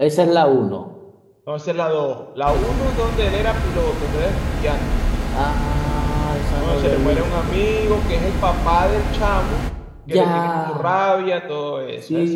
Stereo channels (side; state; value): both; identical; correlation 1.00